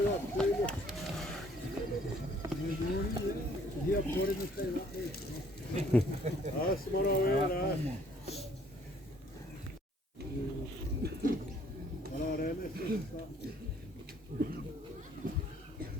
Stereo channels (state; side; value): normal; both; correlation 0.61